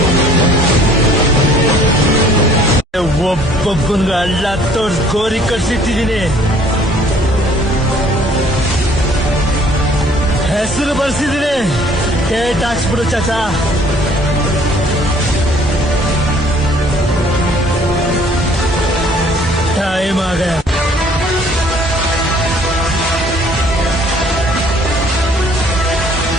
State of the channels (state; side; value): normal; both; correlation 0.57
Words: ಒಬ್ಬೊಬ್ಬಂಗ ಅಲ್ಲ ತೋರ್ಸ್ ಗೋರಿ ಕಟ್ಸಿಟ್ಟಿದ್ದೀನಿ. ಹೆಸರು ಬರ್ಸಿದ್ದೀನಿ, ಡೇಟ್ ಹಾಕ್ಸ್ಬಿಡು ಚಾಚಾ. ಟೈಮ್ ಆಗ